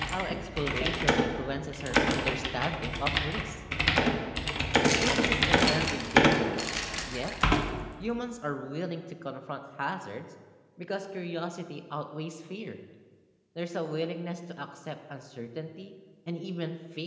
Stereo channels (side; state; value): both; identical; correlation 1.00